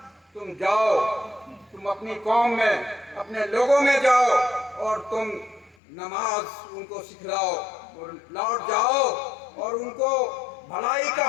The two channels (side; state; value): right; drops out; at 5.8 s